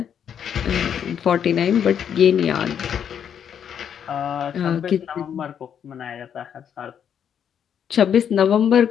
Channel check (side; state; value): right; quieter; 8.5 dB